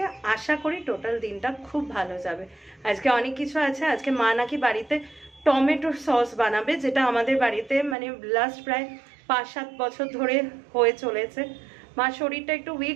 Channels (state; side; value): drops out; left; at 8.0 s